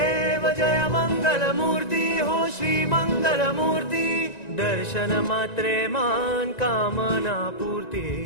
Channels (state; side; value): late; right; 1.9 ms